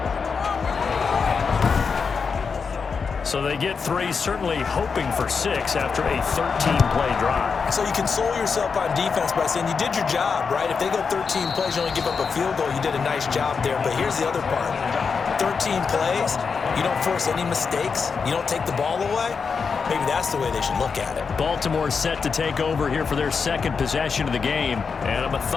So they get 3, certainly hoping for 6 after a 13-play drive. So you console yourself on defense by saying you did your job, right? If they go 13 plays, you only give up a field goal, you did a nice job there. But here's the other part. 13 plays, you don't force any mistakes, you don't take the ball away. Maybe that's the way they should look at it. Baltimore set to take over here for their 2nd possession of the game. And a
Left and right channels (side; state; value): right; quieter; 5.5 dB